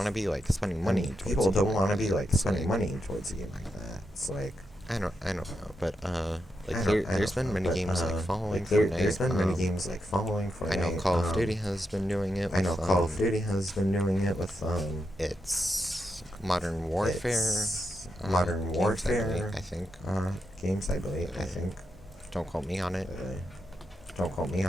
to be like spending money. People don't want to be like spending money towards a game like that. It's like I don't know, but there's been many games like following Fortnite. There's been many games like following Fortnite. I know Call of Duty has been doing it. With, it's Modern Warfare. I think. Games, I believe. Don't quote me on it. I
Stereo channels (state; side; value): normal; both; correlation 0.84